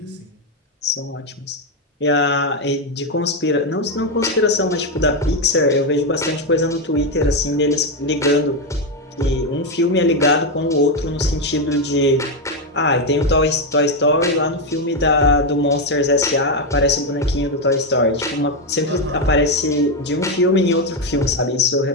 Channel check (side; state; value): both; normal; correlation 0.06